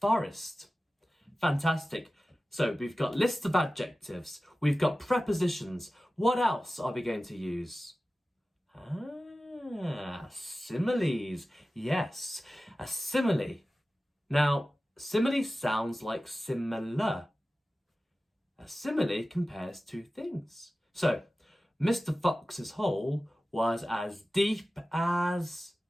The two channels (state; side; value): normal; both; correlation 0.95